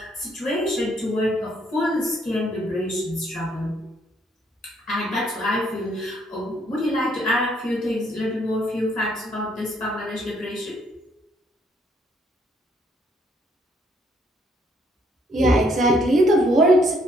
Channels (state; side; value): normal; both; correlation 0.69